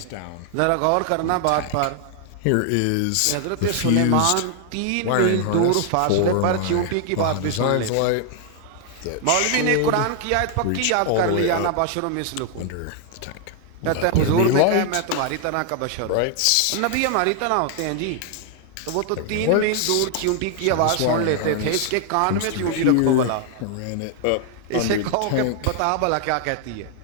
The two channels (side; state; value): both; different; correlation 0.00